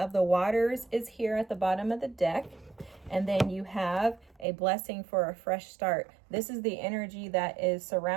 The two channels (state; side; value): drops out; left; at 4.5 s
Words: the waters is here at the bottom of the deck. And then you have a blessing for a fresh start. This is the energy that is